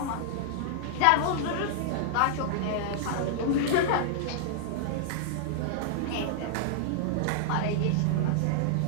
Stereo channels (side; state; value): both; different; correlation -0.01